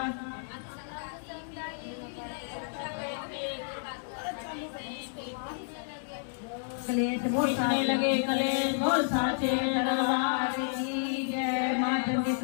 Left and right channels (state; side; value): silent; right; digital silence